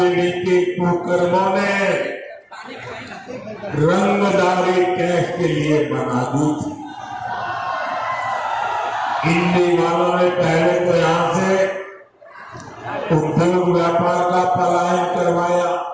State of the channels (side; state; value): both; identical; correlation 1.00